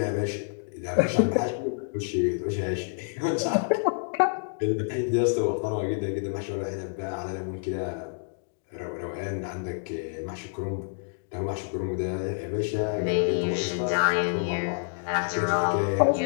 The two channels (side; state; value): right; silent; digital silence